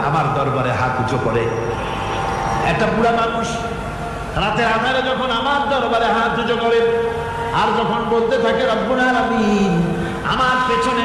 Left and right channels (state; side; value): identical; both; correlation 1.00